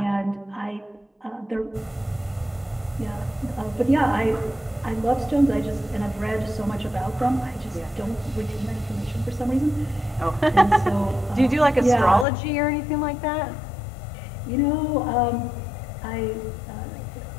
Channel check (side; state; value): right; drops out; at 12.2 s